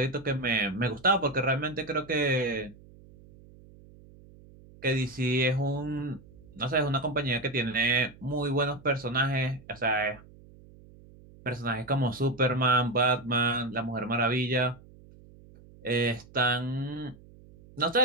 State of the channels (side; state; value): right; noise; hum, 23 dB below the sound